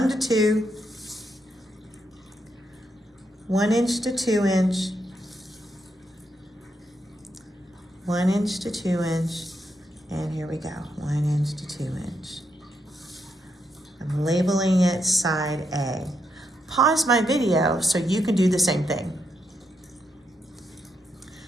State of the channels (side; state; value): both; normal; correlation 0.81